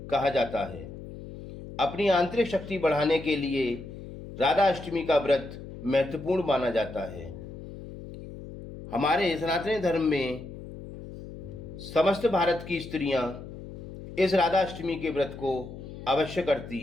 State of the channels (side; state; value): left; noise; hum, 12 dB below the sound